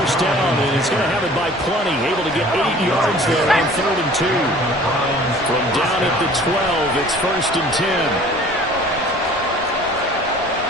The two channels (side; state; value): both; normal; correlation 0.49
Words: down, and he's going to have it by plenty. Able to get 8 yards there on 3rd and 2. From down at the 12, it's 1st and 10.